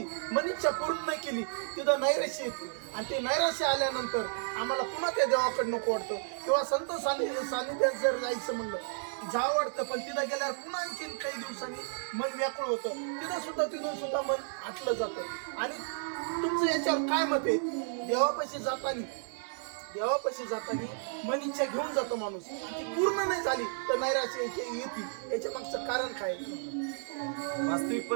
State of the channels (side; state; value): left; silent; digital silence